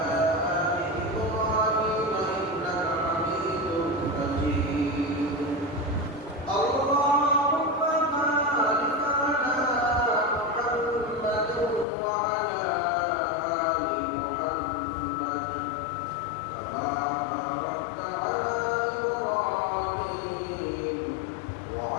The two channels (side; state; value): right; drops out; at 11.9 s